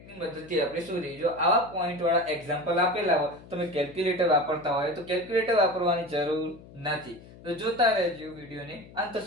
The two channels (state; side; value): noise; left; hum, 20 dB below the sound